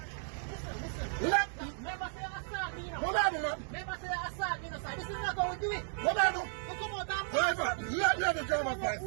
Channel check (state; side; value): silent; left; 55 dB below the other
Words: Listen. Never say assault me, you know. What I do, man? Never say assault me, you know, sir. This is not how we do it. What I do? You come out and Driver, let me have the driver's who